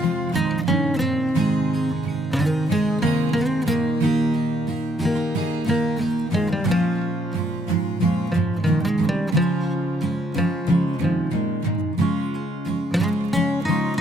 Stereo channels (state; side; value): normal; both; correlation 0.70